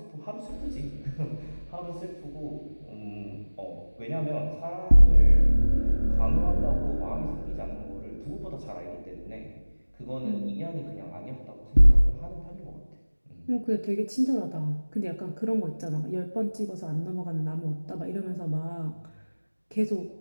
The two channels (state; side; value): inverted; both; correlation -1.00